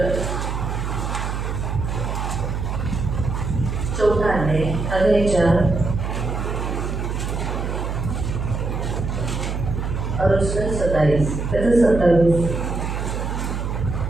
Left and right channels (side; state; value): right; noise; hum, 3 dB below the sound